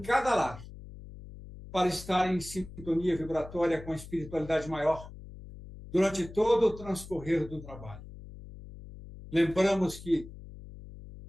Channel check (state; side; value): noise; left; hum, 15 dB below the sound